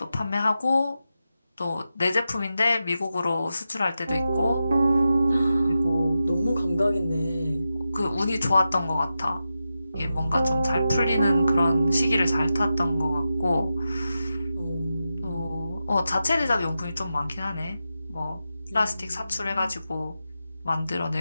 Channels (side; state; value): both; inverted; correlation -0.90